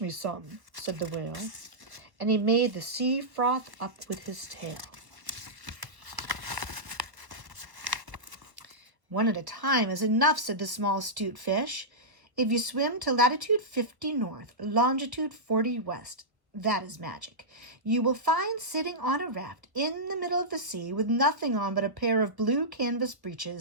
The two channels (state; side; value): late; left; 1.2 ms